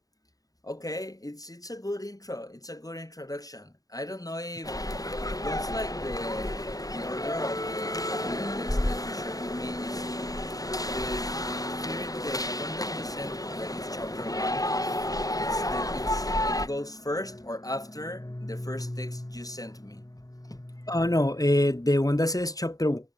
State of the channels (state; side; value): late; right; 0.18 ms